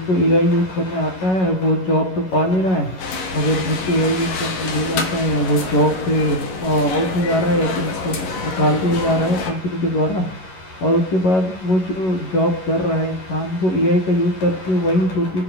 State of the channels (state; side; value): late; right; 11 ms